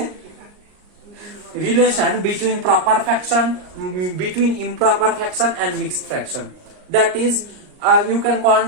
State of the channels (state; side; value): late; left; 39 ms